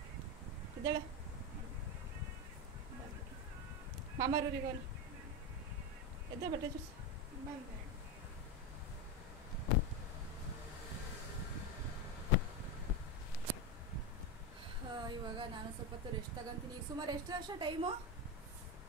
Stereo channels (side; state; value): both; normal; correlation 0.13